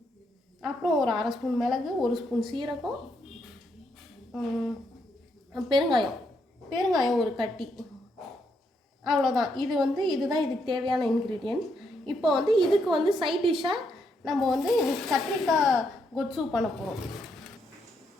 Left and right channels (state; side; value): normal; both; correlation 0.77